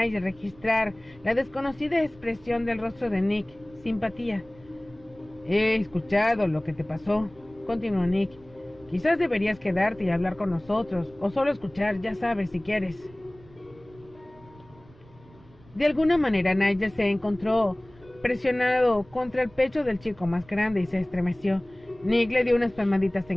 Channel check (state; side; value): noise; right; rumble, 26 dB below the sound